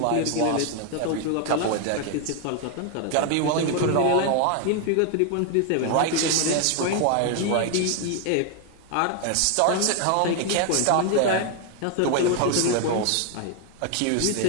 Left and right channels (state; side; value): different; both; correlation 0.00